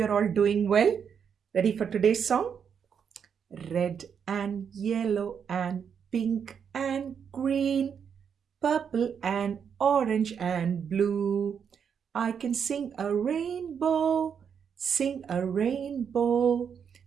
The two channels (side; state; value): left; quieter; 7.3 dB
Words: all doing well. Ready for today's song? Red and yellow and pink and green, purple and orange and blue. I can sing a rainbow, sing a rainbow